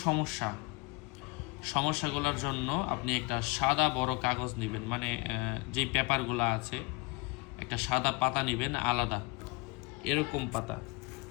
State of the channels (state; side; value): quieter; right; 25.6 dB